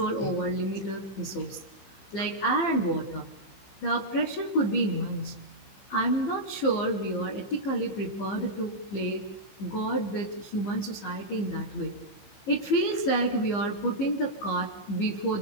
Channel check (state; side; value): late; right; 15 ms